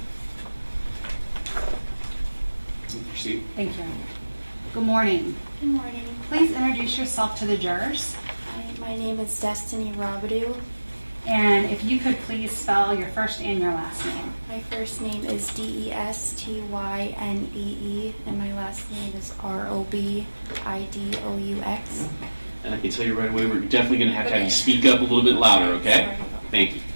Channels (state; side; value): inverted; both; correlation -1.00